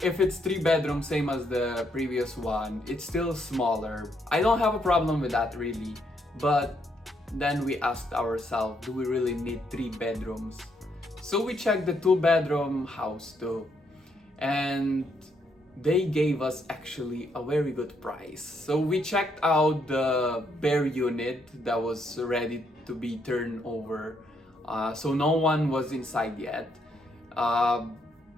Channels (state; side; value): normal; both; correlation 0.74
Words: if it's 3 bedroom, same as the previous one, it's still smaller. I don't have a problem with that really, but then we asked ourselves, do we really need 3 bedrooms? So we checked the 2 bedroom house too, and they gave us actually a very good price. So we checked out the bare unit that was ready to be turned over. So no one was inside yet.